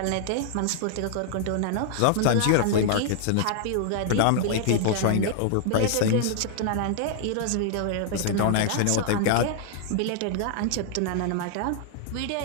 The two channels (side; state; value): both; different; correlation -0.01